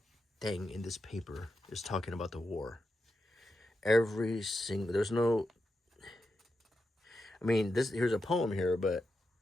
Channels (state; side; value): normal; both; correlation 0.87